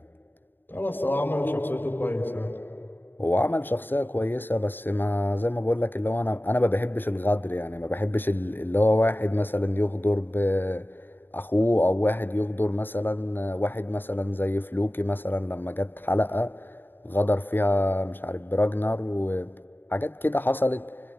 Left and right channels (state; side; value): late; right; 0.095 ms